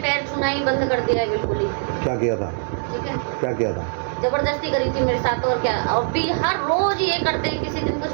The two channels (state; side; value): silent; left; digital silence